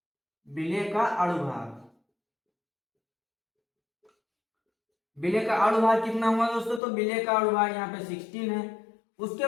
विलय का अणुभार, विलय का अणुभार कितना हुआ दोस्तों, तो विलय का अणुभार यहाँ पे 16 है। उसके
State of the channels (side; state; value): right; drops out; at 6.8 s